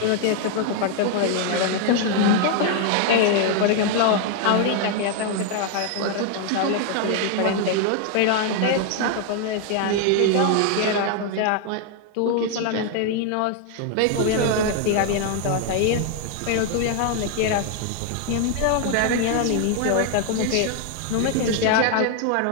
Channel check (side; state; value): both; different; correlation 0.00